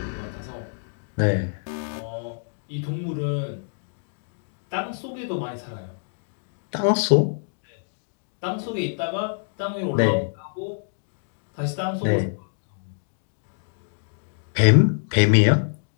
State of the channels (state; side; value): silent; right; digital silence